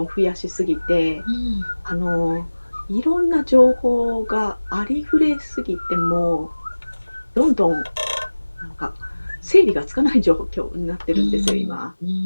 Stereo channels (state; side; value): inverted; both; correlation -1.00